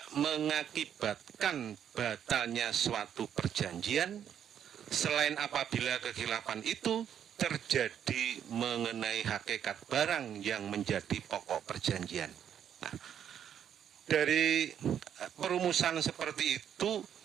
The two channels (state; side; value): quieter; left; 9.2 dB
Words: mengakibatkan batalnya suatu perjanjian selain apabila kekhilafan itu terjadi mengenai hakikat barang yang menjadi pokok perjanjian. Nah, dari perumusan seperti itu